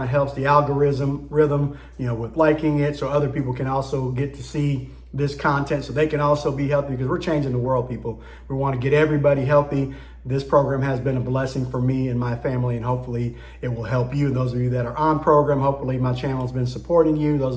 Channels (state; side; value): identical; both; correlation 1.00